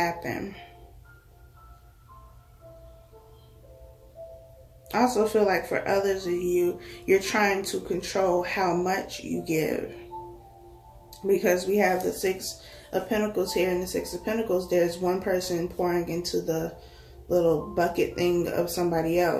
I also feel like for others of you, you're trying to control how much you give. Because we have the 6 of Pentacles here. In the 6 of Pentacles, there's one person pouring into the little bucket thing of somebody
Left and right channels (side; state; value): both; identical; correlation 1.00